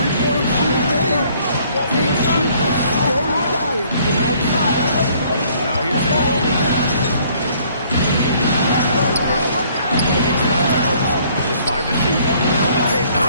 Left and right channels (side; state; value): both; inverted; correlation -0.61